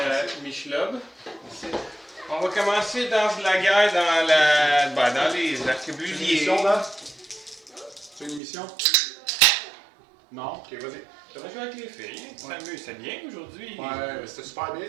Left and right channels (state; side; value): drops out; left; at 8.4 s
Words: Michelob. On va commencer dans la guerre dans les C'est une arquebusiers. émission, là? C'est une émission? Non? Ok, vas-y. Ça va jouer avec les filles. Ouais. C'est bien aujourd'hui. Ouais, c'était super bien,